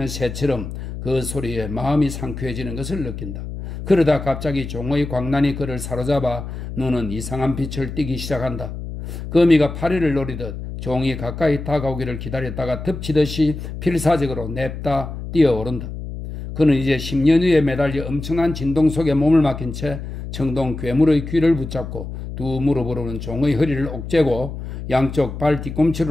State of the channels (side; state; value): left; noise; hum, 8 dB below the sound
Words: 새처럼 그 소리에 마음이 상쾌해지는 것을 느낀다. 그러다 갑자기 종의 광란이 그를 사로잡아 눈은 이상한 빛을 띠기 시작한다. 거미가 파리를 노리듯 종이 가까이 다가오기를 기다렸다가 덮치듯이 필사적으로 냅다 뛰어오른다. 그는 이제 10년 후에 매달려 엄청난 진동 속에 몸을 맡긴 채 청동 괴물의 귀를 붙잡고 두 무릎으로는 종의 허리를 옥죄고 양쪽 발